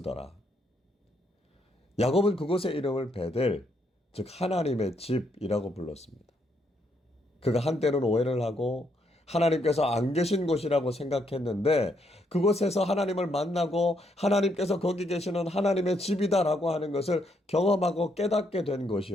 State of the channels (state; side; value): normal; both; correlation 0.75